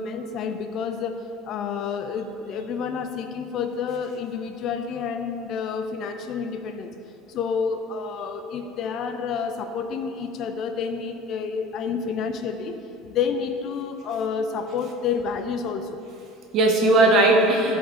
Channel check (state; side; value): normal; both; correlation 0.39